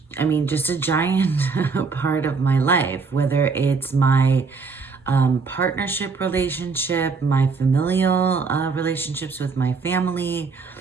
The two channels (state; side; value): quieter; left; 4.7 dB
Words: just a giant part of my life, whether it's my partnership relationship, my familial relationships with my family,